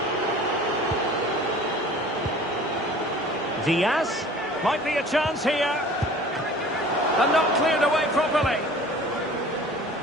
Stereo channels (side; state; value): both; normal; correlation 0.46